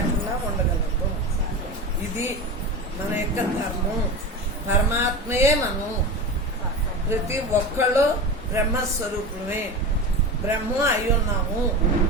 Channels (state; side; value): normal; both; correlation 0.26